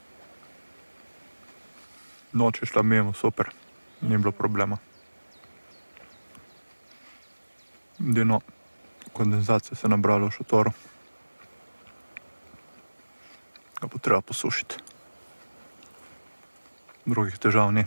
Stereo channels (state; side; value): inverted; both; correlation -1.00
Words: Noč je šla mimo, super. Ni bilo problema. Edino kondenzacije se je nabralo v šotoru. Ga bo treba posušiti. Drugih težav ni.